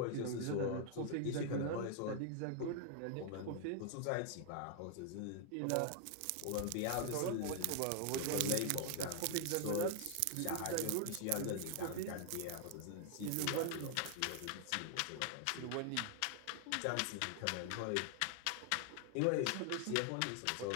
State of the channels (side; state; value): both; different; correlation 0.00